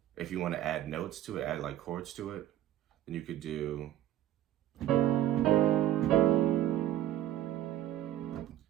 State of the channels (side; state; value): left; quieter; 12.8 dB